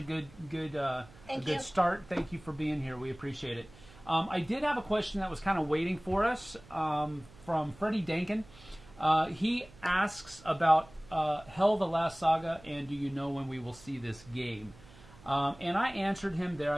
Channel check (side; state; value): right; noise; hum, 22 dB below the sound